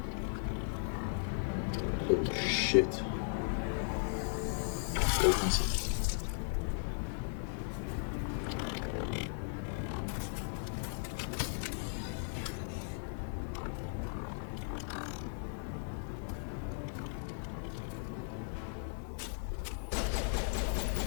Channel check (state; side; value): silent; right; digital silence